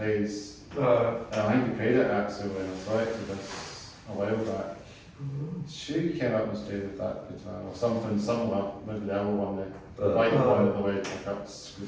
I think he played it actually when I selected this a while back. Sure, he came up and stayed with that guitar or something similar, maybe the other one, the white one with the wedge pickups.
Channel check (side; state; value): both; identical; correlation 1.00